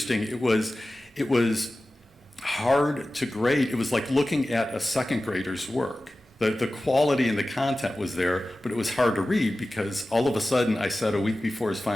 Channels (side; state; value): both; normal; correlation 0.95